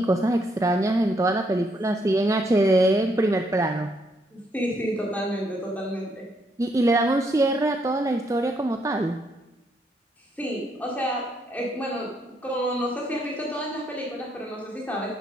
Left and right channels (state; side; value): normal; both; correlation 0.74